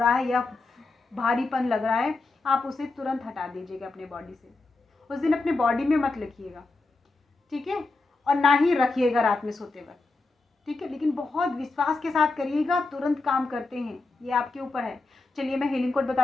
है या भारीपन लग रहा है, आप उसे तुरंत हटा दीजिएगा अपने बॉडी से। उस दिन अपने बॉडी में मत लिखिएगा, ठीक है, और ना ही रखिएगा रात में सोते वक्त, ठीक है। लेकिन बहुत विश्वास के साथ करिएगा, तुरंत काम करते हैं, ये आपके ऊपर है। चलिए मैं हीलिंग कोड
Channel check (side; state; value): right; quieter; 3.5 dB